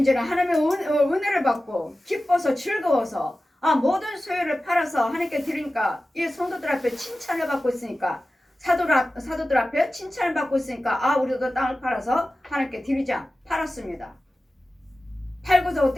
하나님의 은혜를 받고 기뻐서 즐거워서 모든 소유를 팔아서 하나님께 드리니까 이 성도들 앞에 칭찬을 받고 있으니까 사도들 앞에 칭찬을 받고 있으니까 우리도 땅을 팔아서 하나님께 드리자. 팔았습니다. 팔고서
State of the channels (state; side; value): normal; both; correlation 0.95